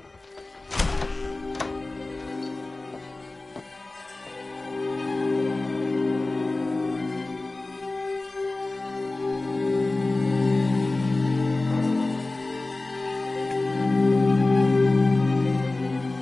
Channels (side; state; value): right; quieter; 3.1 dB